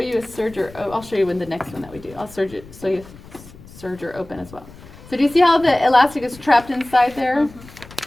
a serger. Oh, I'll show you in the next one that we do. I'll serger so you serger open as well. So do you see how the elastic is trapped inside there?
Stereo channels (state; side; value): noise; left; rumble, 20 dB below the sound